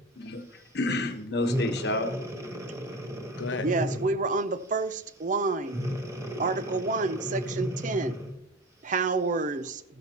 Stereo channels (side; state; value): both; normal; correlation 0.31